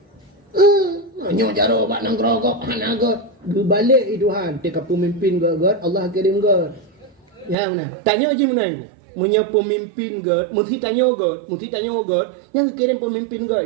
Menyu jarok batang gerogok hanaga. Berbalik itu han. Tika pemimpin God, Allah kirim God. Ya mana? Tanya je mana ni? Punya pemimpin God, mesti tanya God, yang kirim pemimpin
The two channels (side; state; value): left; drops out; at 7.6 s